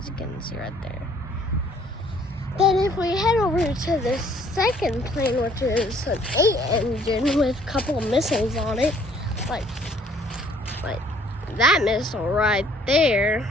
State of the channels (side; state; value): both; normal; correlation 0.61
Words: you can see right there. Then if we head over to the second plane, which is an 8-engine with a couple of missiles on it, like that missile right there.